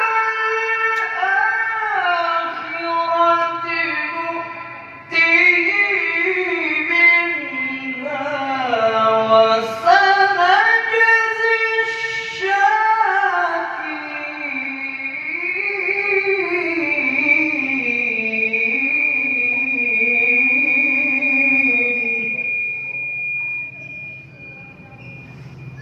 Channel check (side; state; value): both; identical; correlation 1.00